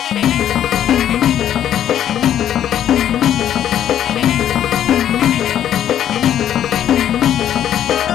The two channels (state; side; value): quieter; right; 10.6 dB